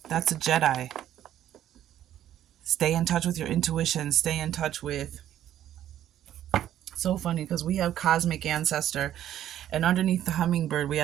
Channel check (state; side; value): quieter; left; 11.7 dB